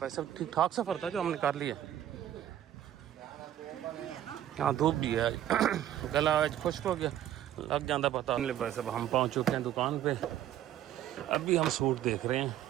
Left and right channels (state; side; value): quieter; left; 11.6 dB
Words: वैसे ठीक ठाक सफ़र था जो हमने कर लिया। हाँ धूप भी है, गला आज खुश्क हो गया, लग जाता पता नहीं। वैसे हम पहुँच चुके हैं दुकान पे, अभी हम सूट देख रहे हैं।